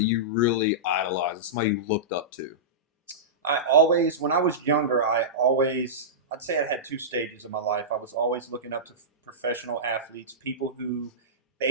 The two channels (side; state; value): both; normal; correlation -0.16